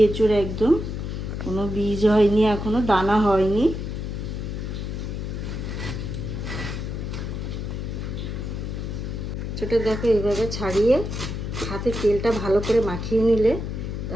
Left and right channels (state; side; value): noise; left; hum, 4 dB below the sound